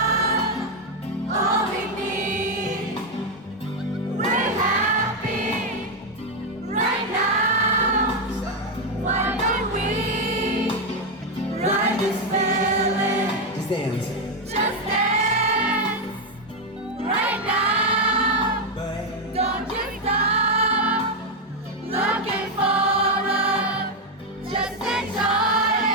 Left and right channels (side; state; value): both; normal; correlation 0.04